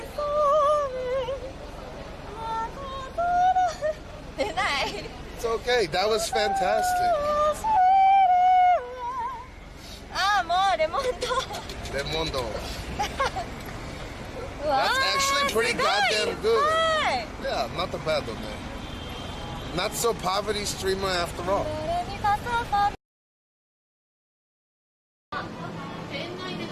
It's okay, that was fantastic. Remondo. That's actually pretty goddamn good. Yeah, not the bad though, man. Not so poverty streamer after all.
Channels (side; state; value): both; identical; correlation 1.00